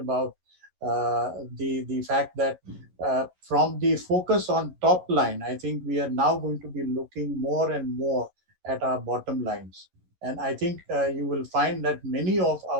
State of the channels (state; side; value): late; left; 11 ms